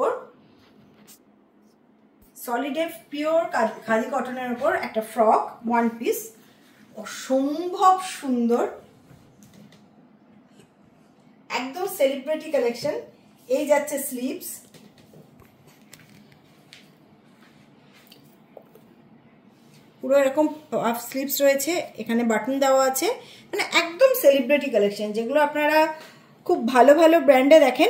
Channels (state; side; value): identical; both; correlation 1.00